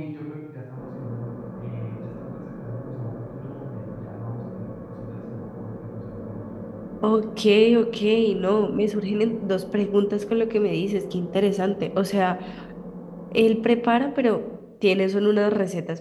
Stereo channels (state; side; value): identical; both; correlation 1.00